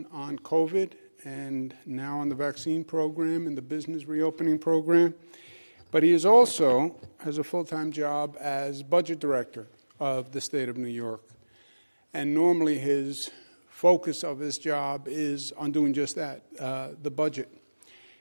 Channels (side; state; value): both; inverted; correlation -1.00